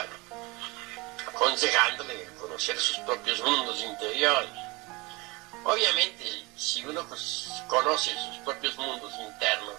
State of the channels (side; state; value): left; quieter; 25.0 dB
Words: aconsejándole conocer sus propios mundos interiores. Obviamente, si uno conoce sus propios mundos